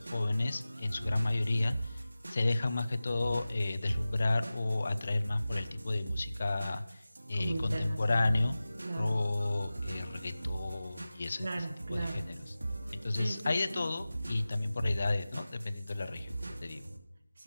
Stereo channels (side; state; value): both; inverted; correlation -0.97